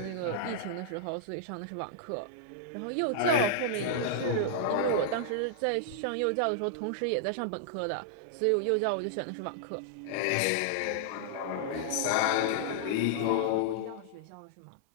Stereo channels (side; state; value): both; different; correlation -0.02